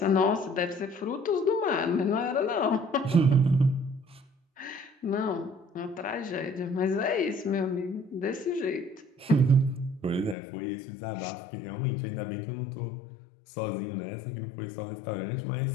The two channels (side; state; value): right; drops out; at 10.4 s